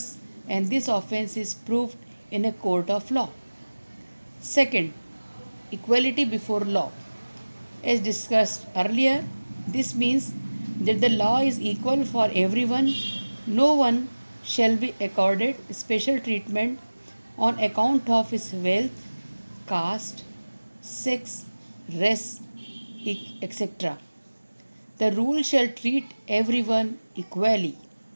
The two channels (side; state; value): both; inverted; correlation -1.00